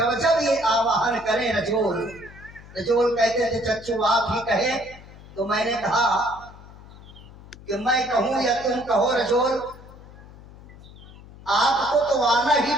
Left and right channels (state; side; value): noise; left; hum, 19 dB below the sound